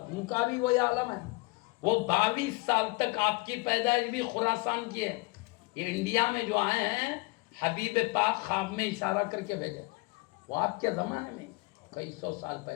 ان کا بھی وہی عالم ہے. وہ 22 سال تک آپ کی پیدائش بھی خراسان کی ہے. یہ انڈیا میں جو آئے ہیں حبیب پاک خواب میں اشارہ کر کے بھیجے, وہ آپ کے زمانے میں کئی سو سال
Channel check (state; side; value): quieter; right; 24.1 dB